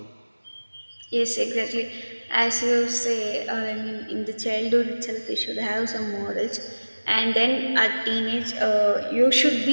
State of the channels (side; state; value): both; inverted; correlation -1.00